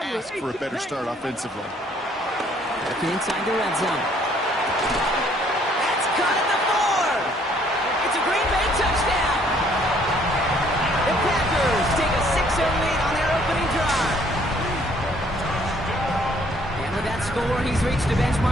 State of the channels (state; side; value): normal; both; correlation 0.63